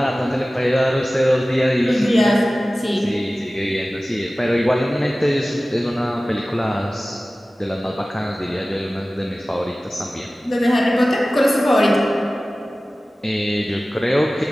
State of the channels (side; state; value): both; normal; correlation 0.97